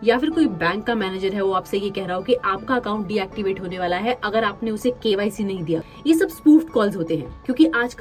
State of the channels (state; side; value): identical; both; correlation 1.00